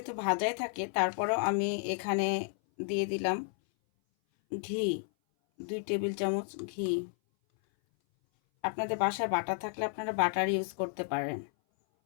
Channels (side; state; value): right; silent; 56 dB below the other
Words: ভাজাই থাকে, তারপরেও আমি এখানে দিয়ে দিলাম ঘি, 2 টেবিল চামচ ঘি। আপনাদের বাসায় বাটার থাকলে আপনারা বাটার ইউজ করতে পারেন।